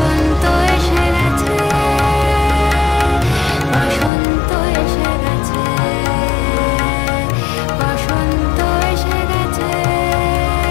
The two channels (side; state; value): right; drops out; at 4.1 s